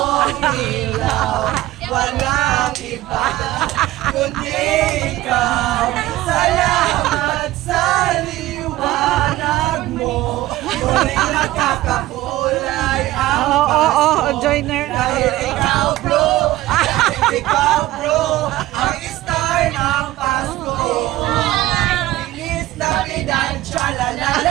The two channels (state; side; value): quieter; left; 16.5 dB